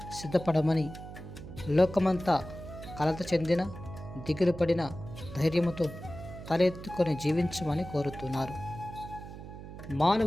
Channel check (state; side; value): noise; right; hum, 12 dB below the sound